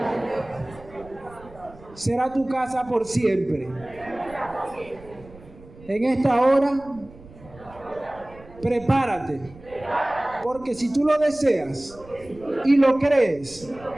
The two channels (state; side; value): noise; right; rumble, 21 dB below the sound